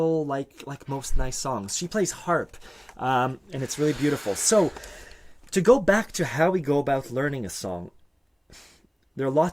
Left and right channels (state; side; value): identical; both; correlation 1.00